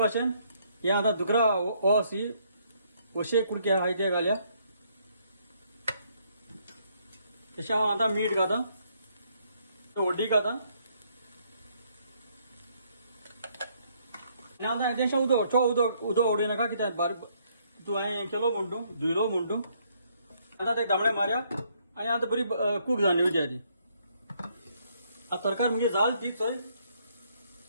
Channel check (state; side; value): inverted; both; correlation -0.69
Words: हे आतां दुकरा सी वशे कुडके आहाय ते घाल्या. तशें हांव आतां मीठ घाता, हळदी घाता आनी आतां हेजें उदक चड उदक उडयनाका. कित्याक बारीक तूं हांवें केलो म्हूण तूं धुयलो म्हूण तूं. आतां ते तांबडे मारया आनी आतां बरी कूक जावन येवची ती. आतां तरकारी म्हणजे जाल ती चोय